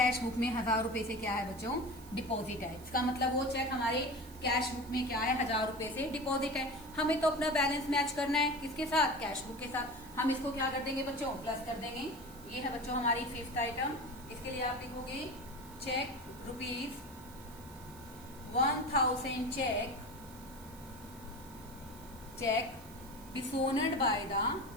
बुक में 1,000 रुपए से क्या है बच्चों डिपॉजिट है। इसका मतलब वो चेक हमारे कैश बुक में क्या है 1,000 रुपए से डिपॉजिट है। हमें तो अपना बैलेंस मैच करना है किसके साथ कैश बुक के साथ। हम इसको क्या कर देंगे बच्चों प्लस कर देंगे। ये है बच्चों हमारी फिफ्थ आइटम। इसके लिए आप लिखोगे cheque ₹1000 cheque dishonoured by the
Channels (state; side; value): noise; right; hiss, 20 dB below the sound